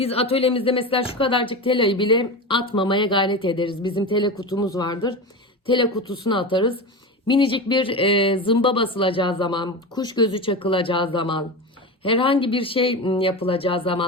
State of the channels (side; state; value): both; normal; correlation 0.23